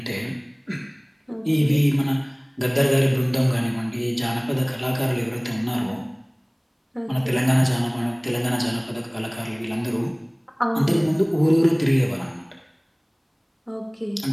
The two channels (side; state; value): both; identical; correlation 1.00